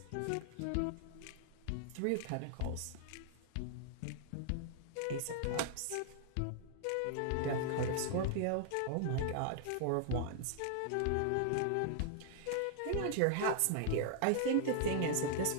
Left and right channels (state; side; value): different; both; correlation -0.01